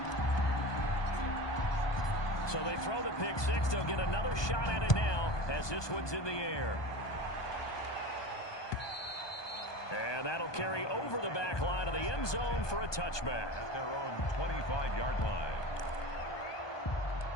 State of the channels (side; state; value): right; late; 1.2 ms